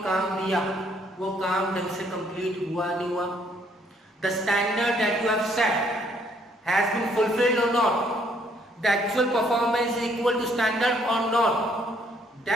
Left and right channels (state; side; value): normal; both; correlation 0.66